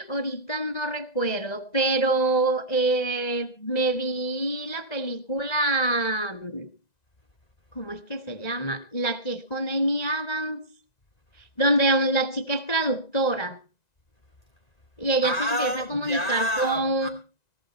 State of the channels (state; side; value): late; right; 1.9 ms